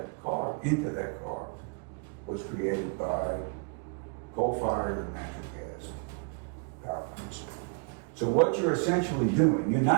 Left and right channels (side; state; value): left; quieter; 36.9 dB